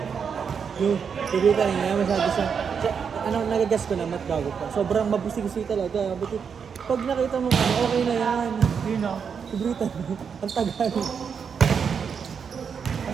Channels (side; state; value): left; quieter; 6.6 dB